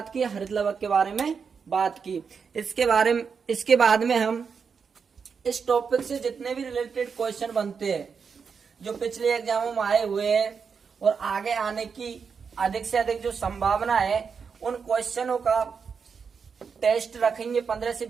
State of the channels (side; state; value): left; quieter; 6.0 dB